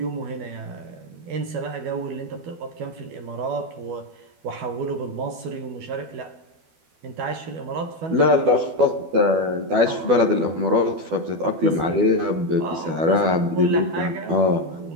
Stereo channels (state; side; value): late; left; 12 ms